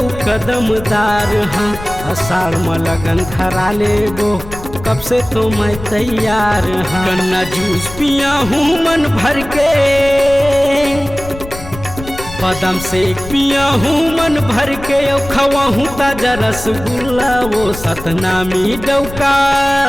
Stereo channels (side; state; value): left; noise; rumble, 13 dB below the sound